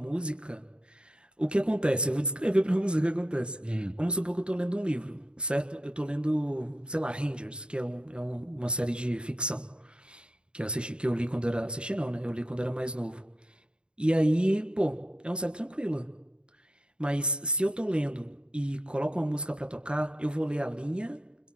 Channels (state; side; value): late; left; 0.052 ms